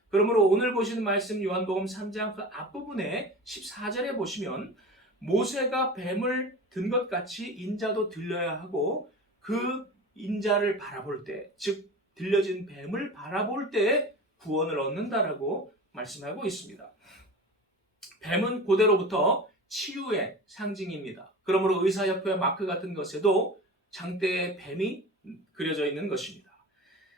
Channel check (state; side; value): normal; both; correlation 0.33